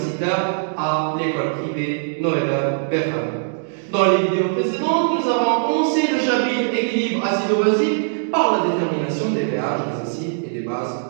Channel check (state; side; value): silent; left; digital silence